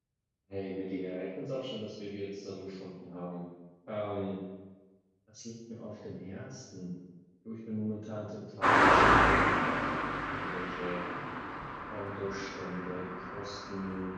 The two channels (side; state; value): both; identical; correlation 1.00